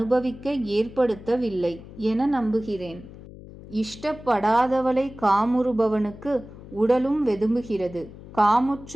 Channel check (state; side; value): noise; left; hum, 17 dB below the sound